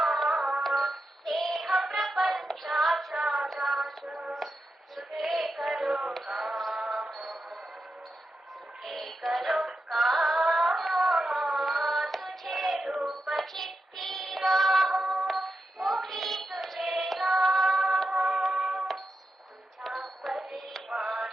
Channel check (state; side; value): normal; both; correlation 0.89